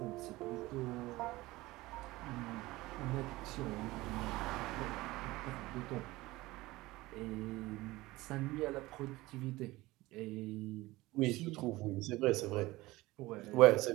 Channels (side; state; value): left; quieter; 19.4 dB